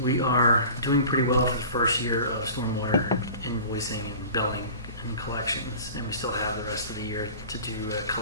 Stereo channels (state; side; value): inverted; both; correlation -0.40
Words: we are doing pretty well for the first year of stormwater invoicing and billing and collections, and we still have the rest of the year to do